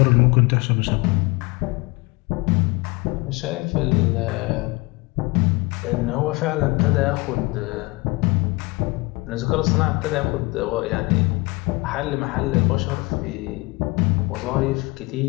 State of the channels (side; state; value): right; quieter; 24.5 dB